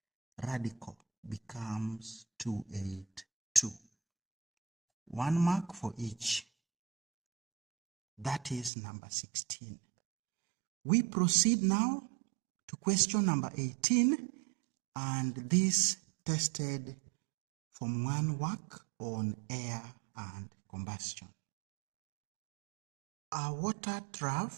radical becomes 282. 1 mark for each. That is number 16. We proceed now to question number 18, and this tested Form 1 work on air and combustion. A water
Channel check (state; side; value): drops out; left; at 8.7 s